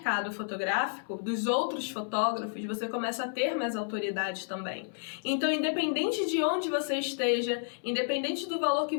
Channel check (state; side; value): silent; right; 57 dB below the other